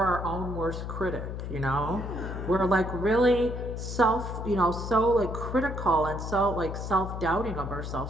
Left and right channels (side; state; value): left; noise; hum, 6 dB below the sound